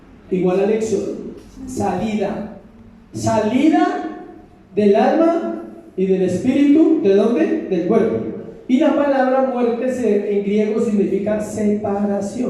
igual al éxodo, salida del alma y del espíritu. ¿De dónde? Del cuerpo. Y la palabra muerte en griego significa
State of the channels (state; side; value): identical; both; correlation 1.00